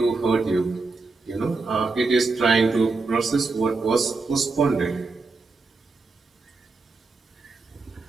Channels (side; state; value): left; quieter; 3.9 dB